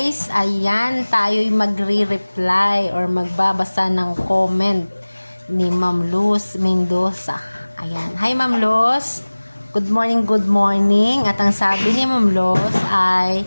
Ayan, tayo'y magre-reply or magbabasa ng comment ni Ma'am Luz Mendoza. Ayan. Hi Ma'am Luz. Good morning, good morning. At ang sabi ni Ma'am Luz ay,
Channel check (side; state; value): both; inverted; correlation -1.00